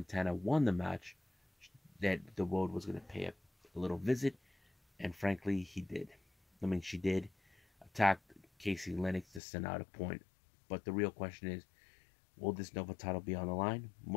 won the match that the World was going to pay a little visit. And frankly, he did. I mean, she did attack Casey Lennox to send out a point. But the real question is, will this Nova title be on the line?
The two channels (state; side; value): drops out; right; at 9.4 s